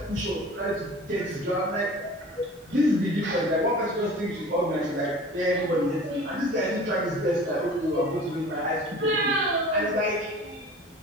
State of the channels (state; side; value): normal; both; correlation 0.42